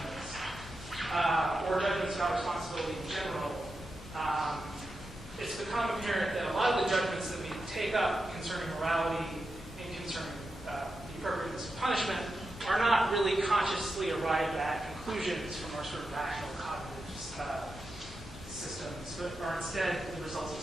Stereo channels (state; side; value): normal; both; correlation 0.89